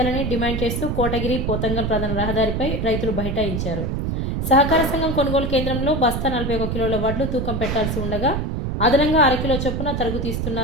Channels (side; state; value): right; noise; rumble, 1 dB below the sound